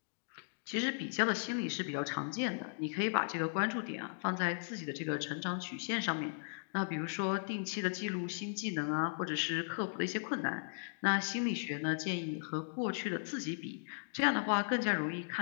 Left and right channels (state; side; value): silent; right; digital silence